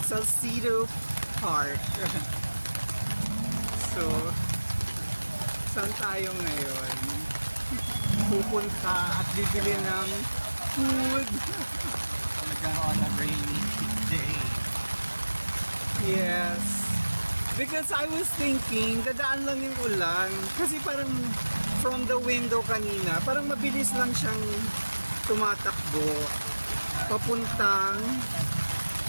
Salcedo Park. So, saan tayo ngayon? Pupunta at bibili ng food. Nagkaroon ng rainy day. Yes. Because I was thinking, dadaan lang yung ulan. Kasi parang from the window kanina, parang mabilis lang siyang tumatakbo. Papuntang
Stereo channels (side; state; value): both; inverted; correlation -1.00